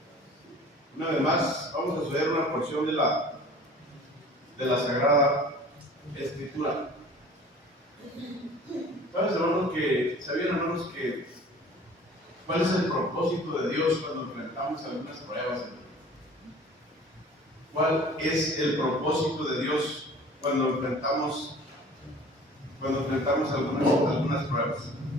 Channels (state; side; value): normal; both; correlation 0.46